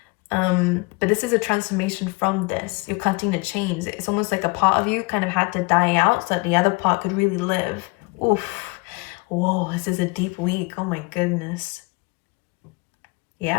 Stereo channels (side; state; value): right; quieter; 26.8 dB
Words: But this is a transformation from this. You're cutting the chains. It's almost like a part of you kind of had to die out so that the other part could really live. Oof. Whoa, this is a deep week. Oh my goodness.